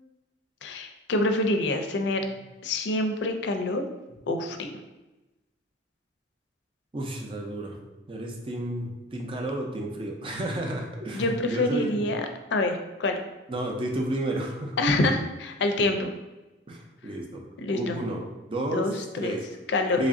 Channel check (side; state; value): both; normal; correlation 0.36